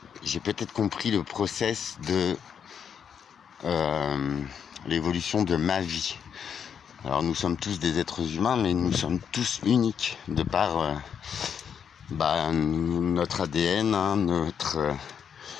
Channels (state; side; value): quieter; right; 7.6 dB